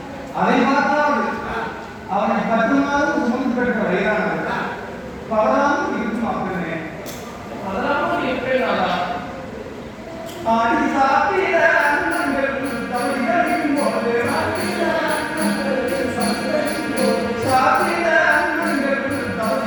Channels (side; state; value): both; identical; correlation 1.00